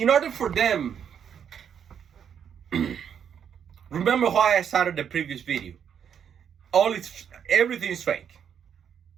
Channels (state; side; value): quieter; left; 8.1 dB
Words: order for them, remember why I started the previous video. Everything is fake.